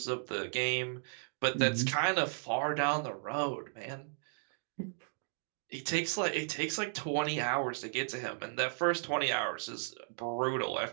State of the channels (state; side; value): silent; left; 54 dB below the other